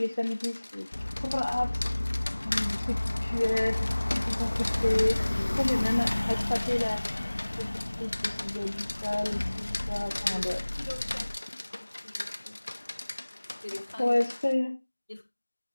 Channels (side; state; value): both; inverted; correlation -1.00